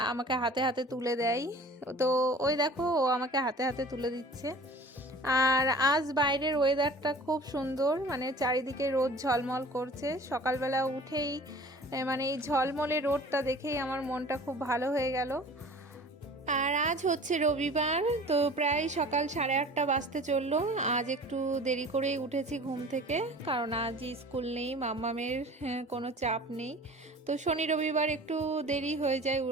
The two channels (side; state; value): both; normal; correlation 0.44